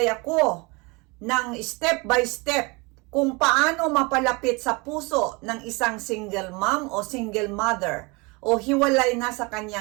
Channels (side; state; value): left; quieter; 27.4 dB